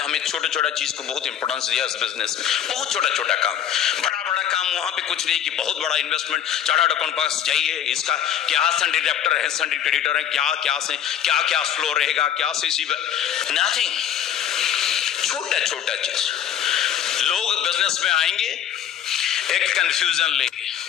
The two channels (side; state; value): right; quieter; 9.7 dB